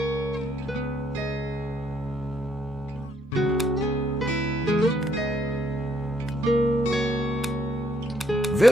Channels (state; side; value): normal; both; correlation 0.70